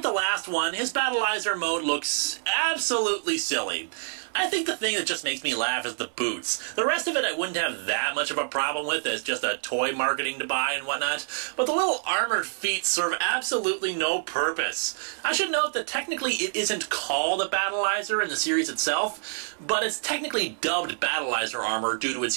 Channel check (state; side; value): silent; left; 60 dB below the other